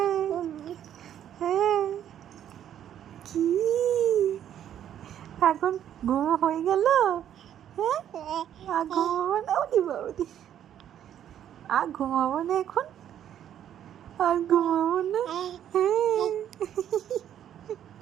কি এখন ঘুমো হয়ে গেল? হ্যাঁ আর ঘুমাবো না? ওদি বাবুদি আর ঘুমাবো না এখন? আর ঘুমাবো না?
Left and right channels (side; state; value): left; quieter; 10.3 dB